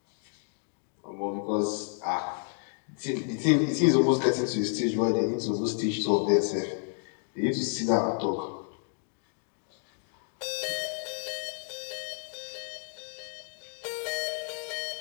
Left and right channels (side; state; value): right; silent; 57 dB below the other